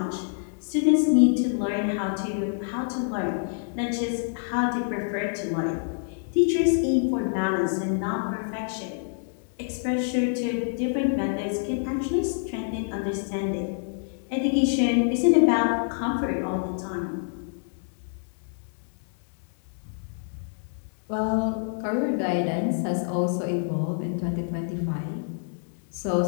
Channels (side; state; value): right; silent; digital silence